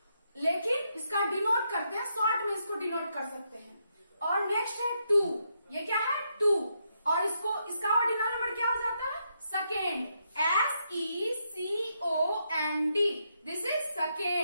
लेकिन इसका डिनोट करते हैं, शॉर्ट में इसको डिनोट कर सकते हैं. और नेक्स्ट है 2. ये क्या है? 2. और इसका ऑर्डिनल नंबर क्या हो जाता है? Second. SECOND. This is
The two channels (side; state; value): both; inverted; correlation -0.79